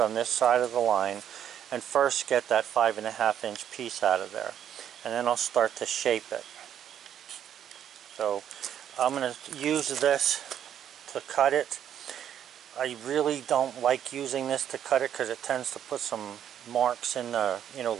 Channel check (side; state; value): left; quieter; 9.8 dB